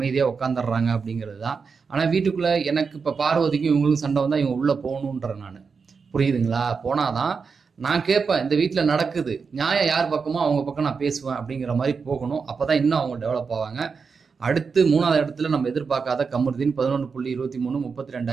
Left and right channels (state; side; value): quieter; left; 5.3 dB